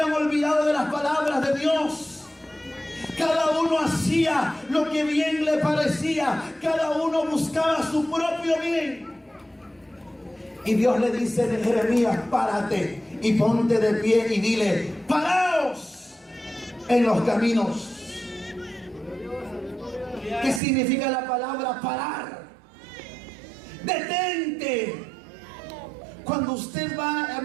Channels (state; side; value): drops out; left; at 20.6 s